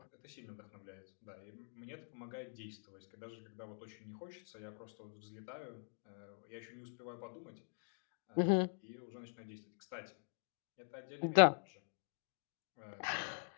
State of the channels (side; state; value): right; silent; digital silence